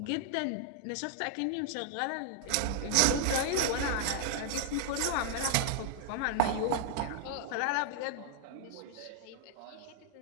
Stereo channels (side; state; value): both; different; correlation 0.00